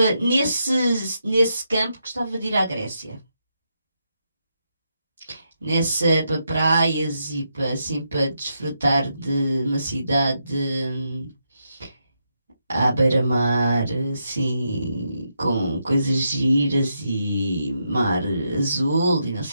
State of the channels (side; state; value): both; inverted; correlation -0.82